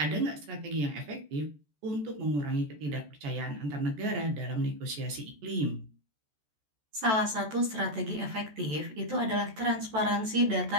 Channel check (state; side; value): late; left; 14 ms